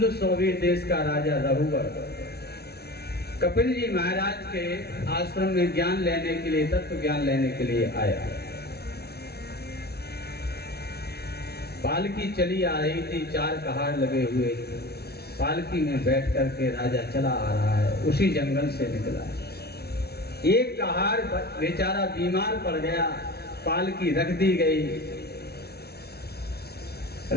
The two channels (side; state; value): right; late; 0.46 ms